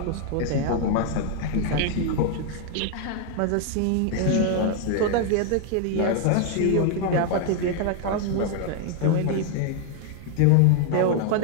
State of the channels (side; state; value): both; different; correlation 0.00